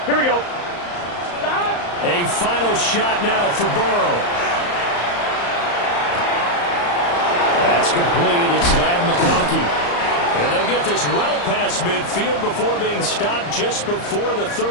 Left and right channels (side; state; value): right; late; 34 ms